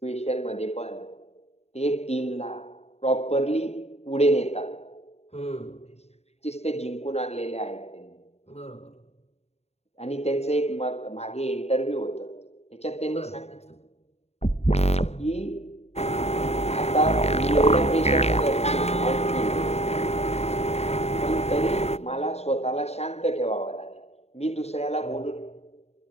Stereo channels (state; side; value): late; right; 0.31 ms